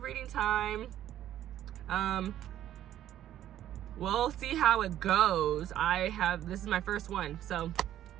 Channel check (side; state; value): left; quieter; 12.0 dB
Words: reading time. We'll see how it goes. This is my first one. So,